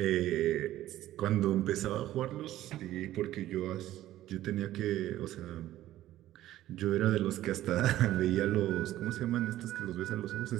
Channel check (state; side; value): quieter; left; 14.1 dB